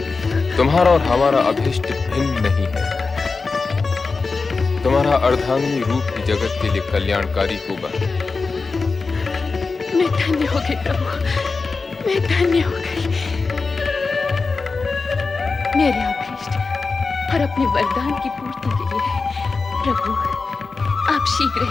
तुम्हारा और हमारा अभीष्ट भिन्न नहीं है। तुम्हारा अर्धांगिनी रूप ही जगत के लिए कल्याणकारी होगा। मैं धन्य हो गई प्रभु, मैं धन्य हो गई। मेरे अभीष्ट और अपने वरदान की पूर्ति के लिए प्रभु आप शीघ्र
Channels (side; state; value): right; quieter; 4.3 dB